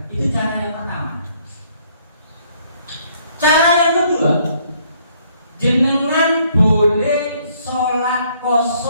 Itu cara yang pertama. Cara yang kedua, jenengan boleh sholat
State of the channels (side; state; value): both; inverted; correlation -0.65